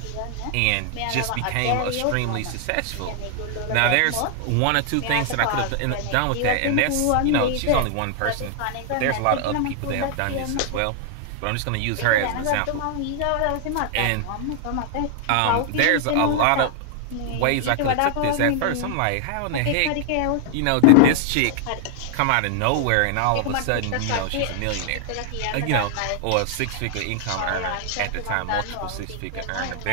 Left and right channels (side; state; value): both; different; correlation 0.00